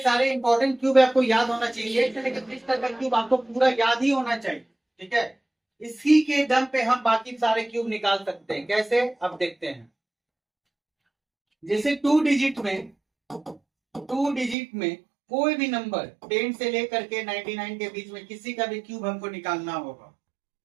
सारे इंपॉर्टेंट क्यूब आपको याद होना चाहिए। 1 से लेकर 30 तक का क्यूब आपको पूरा याद ही होना चाहिए। ठीक है, इसी के दम पे हम बाकी सारे क्यूब निकाल सकते हैं। कैसे, अब देखते हैं। जैसे 2 डिजिट में कोई भी नंबर 10 से लेकर के 99 के बीच में किसी का भी क्यूब हमको निकालना होगा।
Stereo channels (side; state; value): left; drops out; at 14.6 s